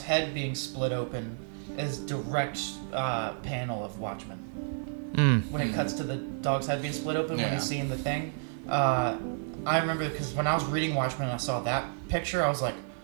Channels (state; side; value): silent; left; 57 dB below the other